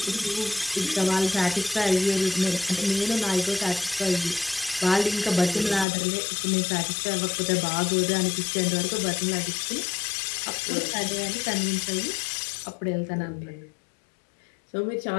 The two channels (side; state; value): right; drops out; at 5.9 s